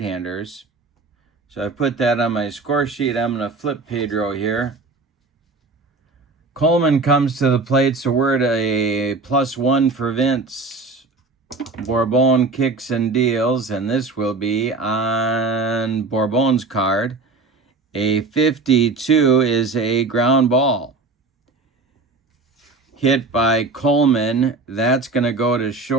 So I put that on my score sheet. I'm going to flip Pedro here. Coleman comes to the plate, so we're at a +1 for Vince. Borbon kicks and deals, and this will be on Borbon's card. A 52 is a ground ball. Hit by Coleman. That's going to go to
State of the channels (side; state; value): left; quieter; 3.7 dB